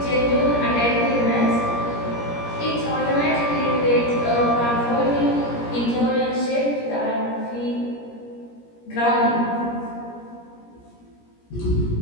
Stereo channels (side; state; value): right; late; 17 ms